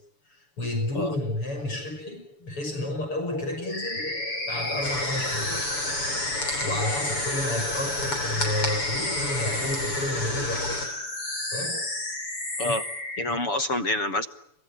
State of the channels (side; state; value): right; late; 7.0 ms